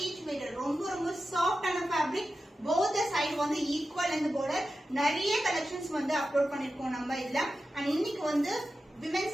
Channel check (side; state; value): both; normal; correlation 0.92